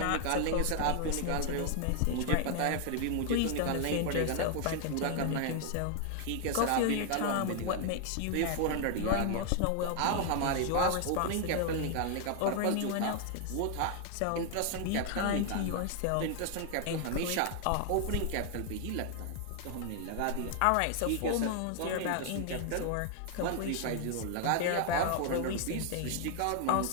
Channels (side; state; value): both; different; correlation 0.00